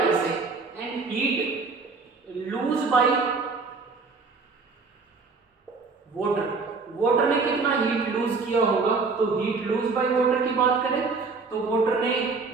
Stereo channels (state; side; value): quieter; left; 4.4 dB